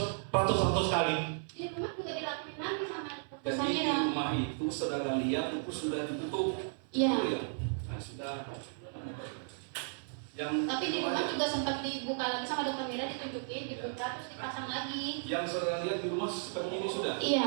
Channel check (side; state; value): left; silent; 55 dB below the other